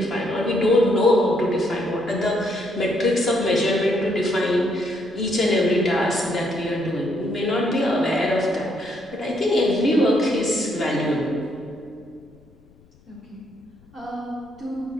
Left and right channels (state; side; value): noise; left; rumble, 28 dB below the sound